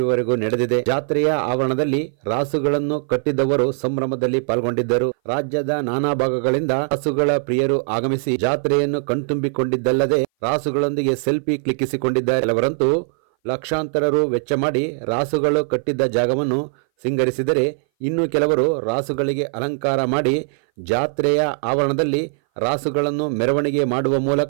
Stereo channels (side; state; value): left; silent; 60 dB below the other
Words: ನಡೆದಿದೆ. ಜಾತ್ರೆಯ ಆವರಣದಲ್ಲಿ ರಾಸುಗಳನ್ನು ಕಟ್ಟಿದ್ದವರು ಸಂಭ್ರಮದಲ್ಲಿ ಪಾಲ್ಗೊಂಡಿದ್ದರು. ರಾಜ್ಯದ ನಾನಾ ಭಾಗಗಳಿಂದ ರಾಸುಗಳ ಪ್ರಿಯರು ಆಗಮಿಸಿ ಜಾತ್ರೆಯನ್ನು ಕಣ್ತುಂಬಿಕೊಂಡಿದ್ದಲ್ಲದೆ ರಾಸುಗಳೊಂದಿಗೆ ಸೆಲ್ಫಿ ಕ್ಲಿಕ್ಕಿಸಿಕೊಂಡಿದ್ದಾರೆ. ಕೆಲವರಂತೂ ಲಕ್ಷಾಂತರ ರು ವೆಚ್ಚ ಮಾಡಿ ರಾಸುಗಳು ಕಟ್ಟಿದ್ದ ಜಾಗವನ್ನು ಸಿಂಗರಿಸಿದರೆ, ಇನ್ನು ಕೆಲವರು ರಾಸುಗಳಿಗೆ ಅಲಂಕಾರ ಮಾಡಿ ಜಾತ್ರೆಯ ಆವರಣದಲ್ಲಿ ರಾಸುಗಳನ್ನು ಮೆರವಣಿಗೆ ಮಾಡುವ